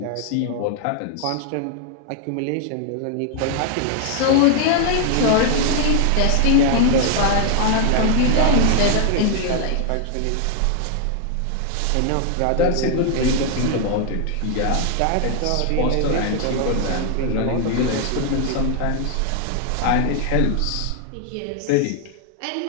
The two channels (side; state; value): both; different; correlation 0.00